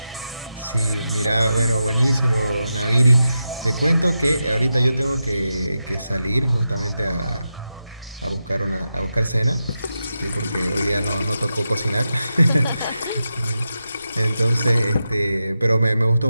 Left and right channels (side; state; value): both; inverted; correlation -0.89